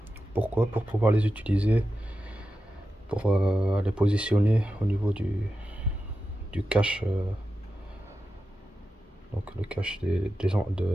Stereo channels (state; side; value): normal; both; correlation 0.91